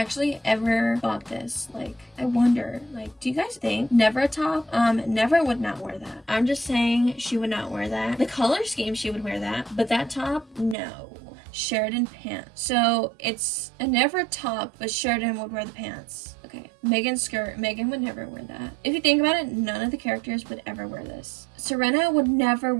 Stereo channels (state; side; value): drops out; left; at 10.8 s